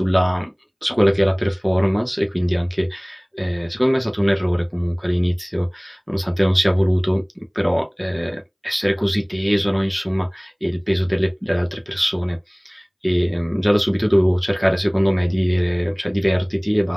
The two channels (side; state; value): both; identical; correlation 1.00